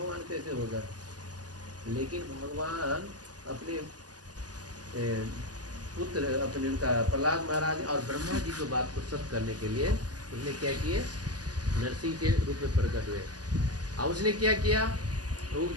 कैसे होगा। लेकिन भगवान अपने पुत्र, अपने उनका प्रहलाद महाराज और ब्रह्मा जी की बात को सत्य करने के लिए उसने क्या किए, नरसिंह के रूप में प्रकट हुए। और उसने क्या किया, वो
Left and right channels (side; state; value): left; late; 0.68 ms